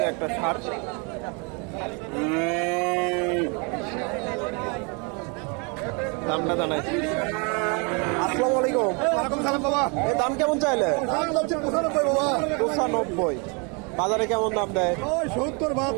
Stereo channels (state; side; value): quieter; left; 33.0 dB